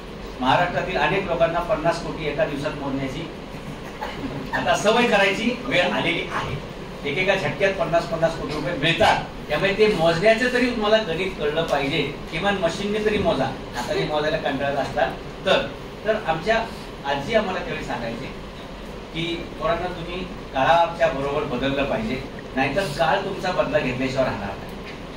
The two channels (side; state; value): both; identical; correlation 1.00